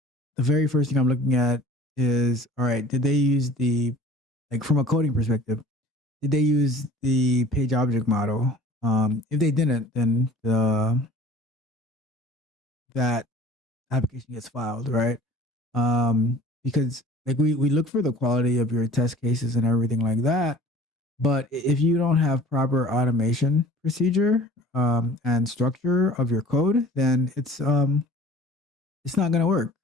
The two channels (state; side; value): normal; both; correlation 0.47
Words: the very first thing I'm looking at is, all right, did they use from a coding perspective, did they use the page object model? If they didn't, then that application gets filed, right? Because like we look for the quality of your test cases and everything like that. But if you don't have proper automation procedure and structure of your code, then it's not going to work.